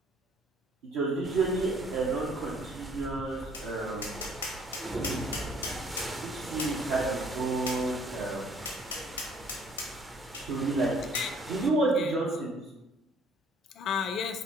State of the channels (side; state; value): both; normal; correlation 0.59